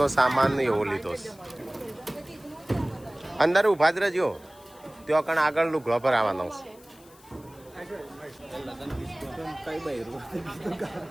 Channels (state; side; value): noise; left; hiss, 25 dB below the sound